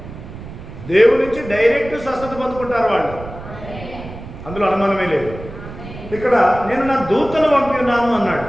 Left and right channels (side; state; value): right; noise; rumble, 13 dB below the sound